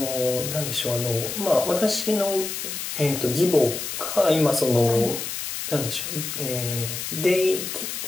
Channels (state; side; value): noise; left; hiss, 5 dB below the sound